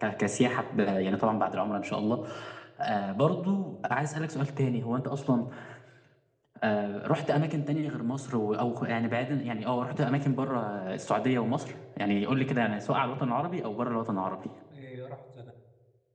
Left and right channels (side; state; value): both; identical; correlation 1.00